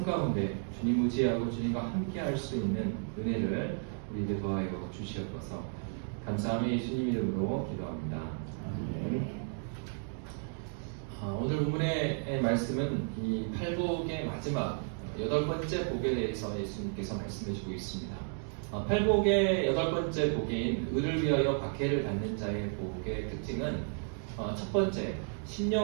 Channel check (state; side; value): silent; left; 56 dB below the other